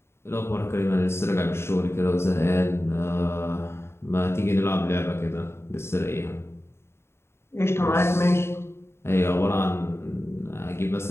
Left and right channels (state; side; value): late; right; 0.12 ms